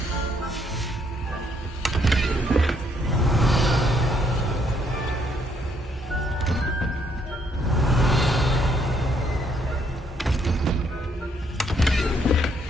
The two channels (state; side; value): normal; both; correlation 0.70